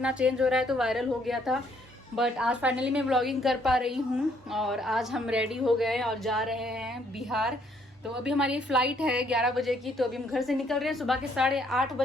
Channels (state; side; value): normal; both; correlation 0.68